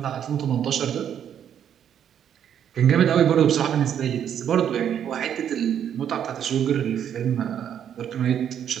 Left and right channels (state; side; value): quieter; left; 9.2 dB